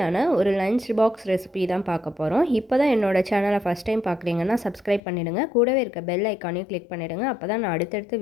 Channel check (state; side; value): drops out; right; at 5.0 s